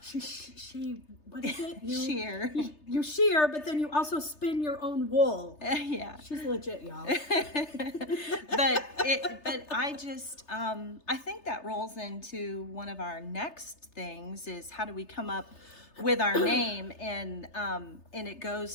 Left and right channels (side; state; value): right; late; 3.3 ms